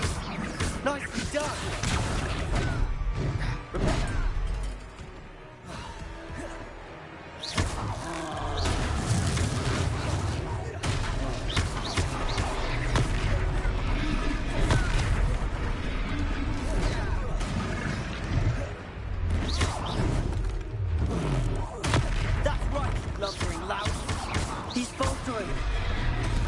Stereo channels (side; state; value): both; identical; correlation 1.00